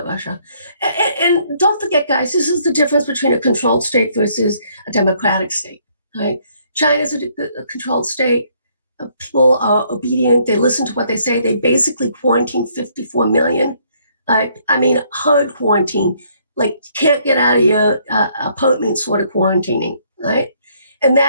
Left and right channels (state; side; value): inverted; both; correlation -0.67